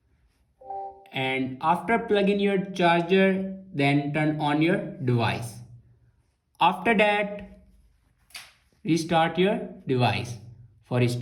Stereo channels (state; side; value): identical; both; correlation 1.00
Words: And after plugging your charger, then turn on your device. After that, restart your device. For